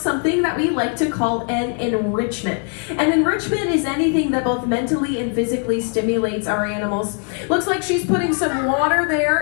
that we like to call an enrichment. An enrichment is anything that both mentally and physically stimulates our animals. Looks like she's putting some water there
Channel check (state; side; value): quieter; right; 39.8 dB